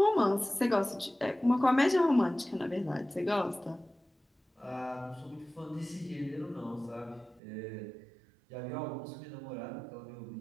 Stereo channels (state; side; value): drops out; left; at 7.4 s